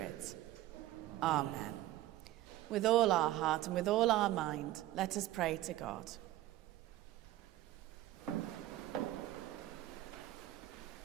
Amen. With all our heart and with all our mind, let us pray to God.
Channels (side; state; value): left; quieter; 15.0 dB